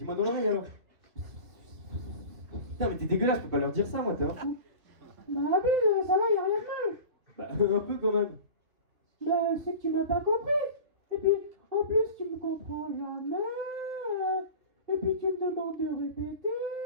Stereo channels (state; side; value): late; left; 3.0 ms